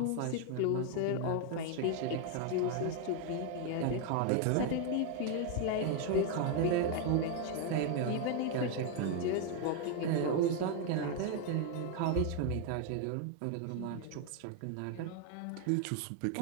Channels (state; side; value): different; both; correlation 0.01